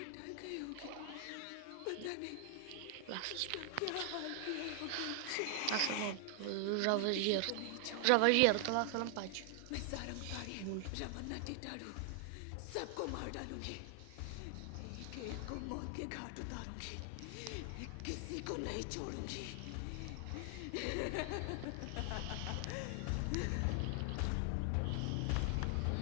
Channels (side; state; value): both; different; correlation 0.00